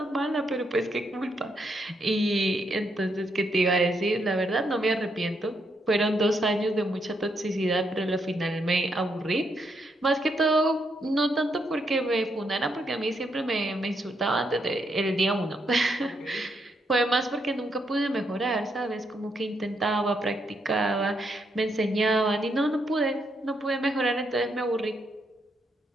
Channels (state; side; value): normal; both; correlation 0.78